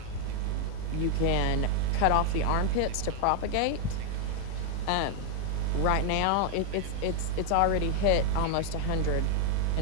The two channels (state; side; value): different; both; correlation 0.00